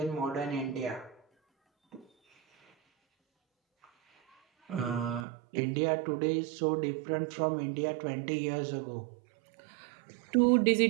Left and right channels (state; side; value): drops out; left; at 5.2 s